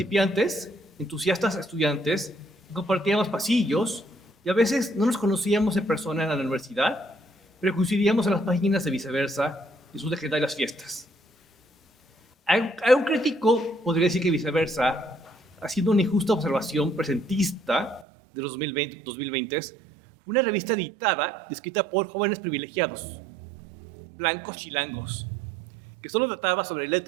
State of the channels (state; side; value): drops out; left; at 18.1 s